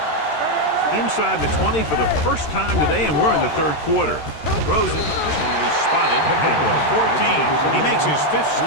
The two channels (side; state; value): right; late; 13 ms